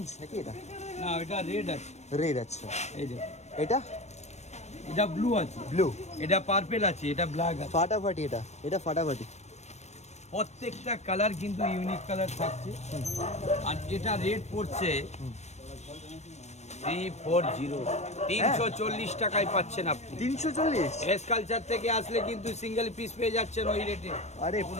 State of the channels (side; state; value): right; late; 0.32 ms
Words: নাকি? এটা না এটা রেড আছে। রেড। আচ্ছা, এই দেখুন, এটা এটা ব্লু আছে, ব্লু। এটা পার্পল আছে, এটা ব্ল্যাক আছে। ফাটাফাটি, এটা ফাটাফাটি। প্রত্যেকটা কালার কিন্তু ইউনিক কালার থাকছে। আর এটা রেট পড়ছে 340, 340 টাকায় পাচ্ছেন আপনি। 340? এস কালচার থেকে আসলে কিন্তু সিঙ্গেল পিস পেয়ে যাচ্ছেন ওই রেটে। আরে